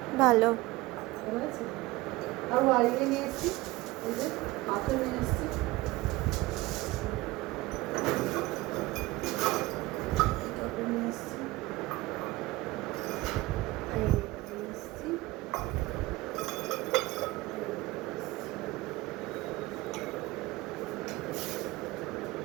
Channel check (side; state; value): left; quieter; 20.1 dB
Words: ভালো। ভালো আছে। আর ওয়ারিয়ে নিয়ে এসেছি, এই যে পাথর নিয়ে এসেছি, টবে নিয়ে এসেছি, এই নিয়ে এসেছি।